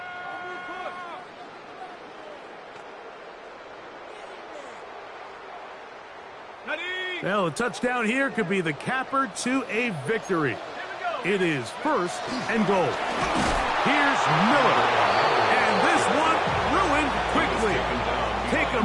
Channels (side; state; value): both; identical; correlation 1.00